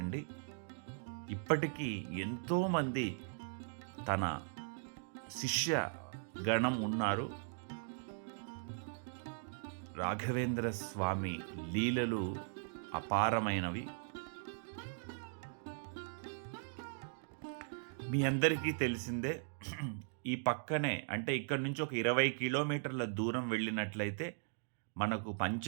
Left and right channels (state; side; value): silent; left; digital silence